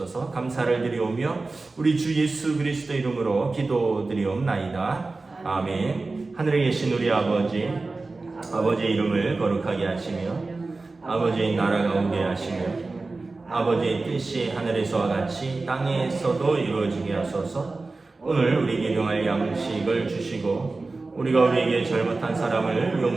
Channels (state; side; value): quieter; left; 3.6 dB